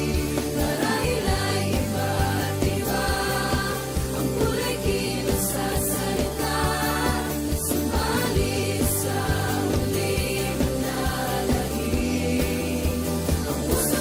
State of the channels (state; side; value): identical; both; correlation 1.00